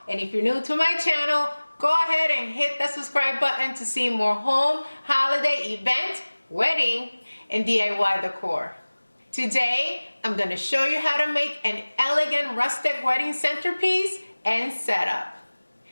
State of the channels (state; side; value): inverted; both; correlation -1.00